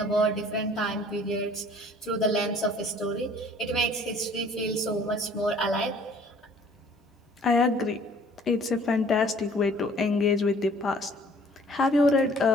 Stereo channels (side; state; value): both; normal; correlation 0.54